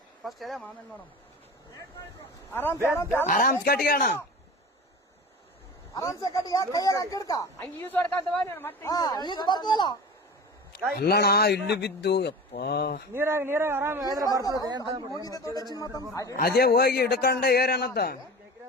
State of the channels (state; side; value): normal; both; correlation 0.34